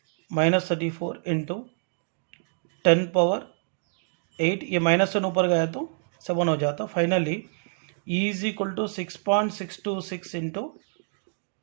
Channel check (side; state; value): left; silent; digital silence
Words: into 10⁻8। ये -1 ऊपर गया तो 7 हो जाता। Finally E is equal to 6.626 into